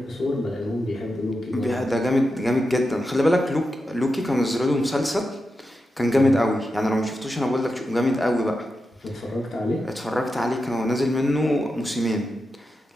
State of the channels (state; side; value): normal; both; correlation 0.89